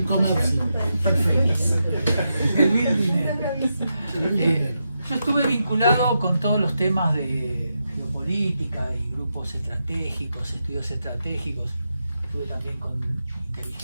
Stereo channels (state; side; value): inverted; both; correlation -0.86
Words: Comercio. Perfecto. El mil dinero. Yo estuve vinculado con todos los temas de geopolítica y grupos estratégicos, estudios estratégicos. Estuve también con